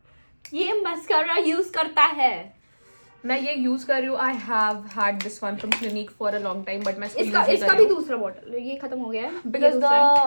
ये मस्करा यूज करता है. मैं ये यूज कर रही हूँ. I have had this one from clinic for a long time, but मैं इसका भी दूसरा बॉटल ये खत्म हो गया है because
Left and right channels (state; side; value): inverted; both; correlation -1.00